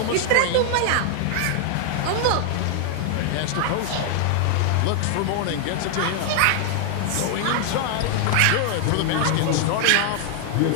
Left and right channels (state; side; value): different; both; correlation 0.00